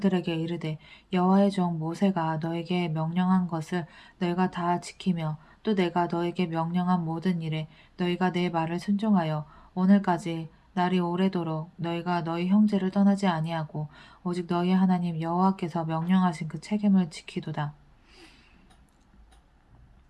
이르되 여호와의 종 모세가 너에게 명령한 것을 너희가 다 지키며 또 내가 너에게 명령한 모든 일에 너희가 내 말을 순종하여 오늘까지 날이 오래도록 너희가 너희 형제를 떠나지 아니하고 오직 너희 하나님 여호와께서 명령하신 그 책임을 지키도다.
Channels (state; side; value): identical; both; correlation 1.00